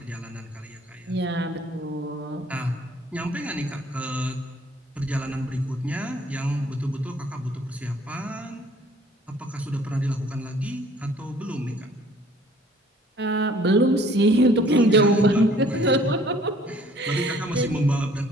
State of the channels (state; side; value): normal; both; correlation 0.56